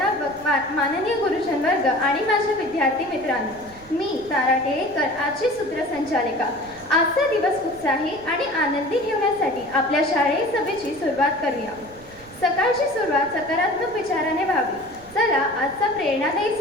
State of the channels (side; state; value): right; noise; rumble, 23 dB below the sound